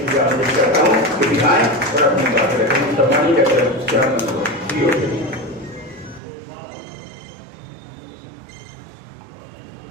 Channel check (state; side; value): drops out; left; at 6.2 s